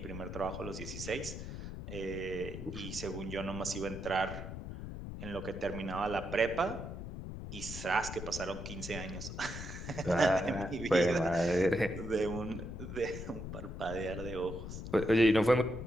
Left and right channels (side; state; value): left; noise; rumble, 8 dB below the sound